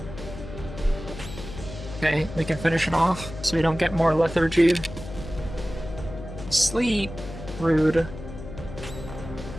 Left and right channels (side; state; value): left; noise; hum, 11 dB below the sound